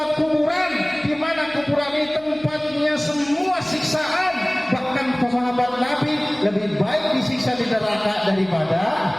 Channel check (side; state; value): left; noise; hum, 27 dB below the sound